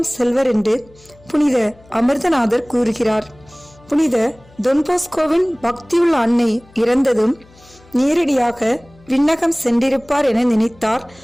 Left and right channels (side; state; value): left; noise; hum, 27 dB below the sound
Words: செல்வர் என்று புனித அமிர்தநாதர் கூறுகிறார். புனித தொன்போஸ்கோவின் பக்தியுள்ள அன்னை இறந்ததும் நேரடியாக விண்ணகம் சென்றிருப்பார் என நினைத்தார்